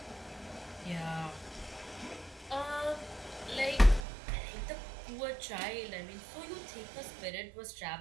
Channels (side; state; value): left; drops out; at 4.0 s